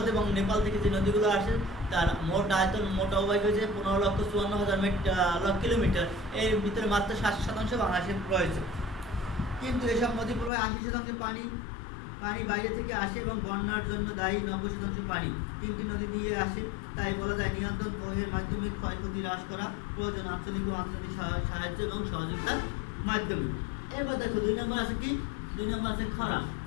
এবং নেপাল থেকে যে নদীগুলো আসে তার মোট আয়তন, মোট অববাহিকা হয়েছে 15,54,000 কিলোমিটার। এর ভিতরে মাত্র 60% বাংলাদেশে রয়েছে। কিন্তু এসব নদী প্রবাহে 80% পানি বাইরে থেকে আসে এবং বন্যার জন্য দায়ী 90% পানি 3টি নদী দিয়ে আসে। তাই বলা যায় নিয়ন্ত্রণ ও এর মাধ্যমে ক্ষয়ক্ষতি হ্রাস করা প্রয়োজন আঞ্চলিক ও আন্তর্জাতিক সাহায্য এবং সহযোগিতার মাধ্যমে। এবার দেখো 2 নম্বর আছে কি? 2 নম্বর আছে খরা।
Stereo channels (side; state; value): right; drops out; at 10.5 s